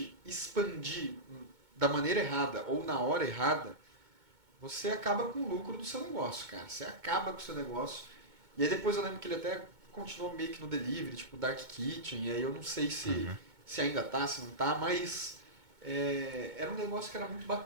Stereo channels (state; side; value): late; left; 2.2 ms